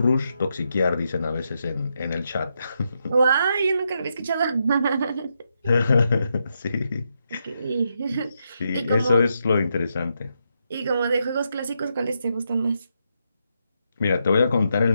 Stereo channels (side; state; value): both; inverted; correlation -0.82